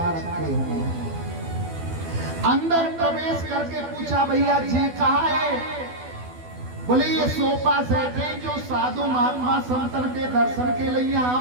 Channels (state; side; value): late; left; 12 ms